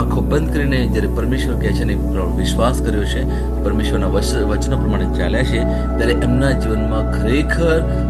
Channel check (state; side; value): identical; both; correlation 1.00